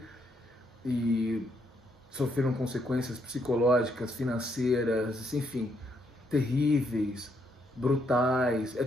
e sofreram consequências psicológicas, financeiras, enfim, terríveis, brutais, é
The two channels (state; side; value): normal; both; correlation 0.75